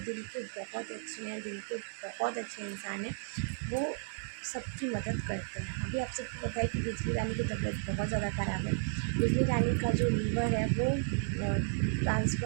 दिल के बहुत अच्छे हैं, दिल के बहुत अच्छे इंसान हैं, वो सबकी मदद करते हैं। अभी आप सबको पता है कि बिजली रानी की तबीयत बहुत ज़्यादा ख़राब है। बिजली रानी का जो लीवर है वो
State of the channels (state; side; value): silent; left; digital silence